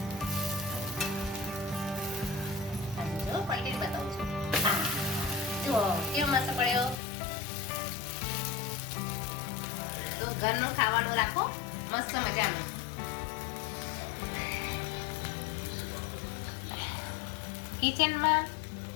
જો પલટી બતાવું છું. જો કેવો મસ્ત પડ્યો. તો ઘરનું ખાવાનું રાખો મસ્ત મજાનું. કિચનમાં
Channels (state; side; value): drops out; right; at 7.0 s